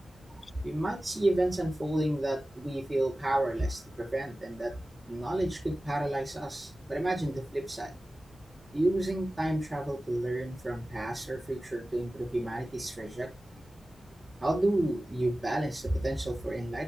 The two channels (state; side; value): normal; both; correlation 0.96